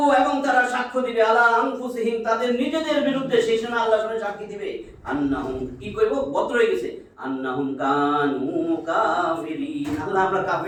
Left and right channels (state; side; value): identical; both; correlation 1.00